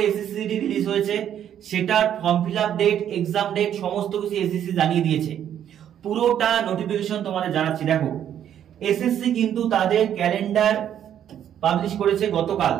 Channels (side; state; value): left; quieter; 10.0 dB